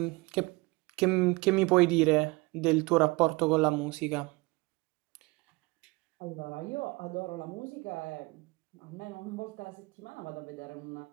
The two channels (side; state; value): left; quieter; 24.5 dB